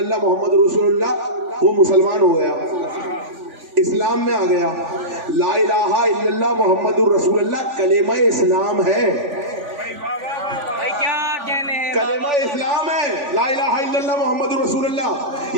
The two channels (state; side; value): late; left; 3.5 ms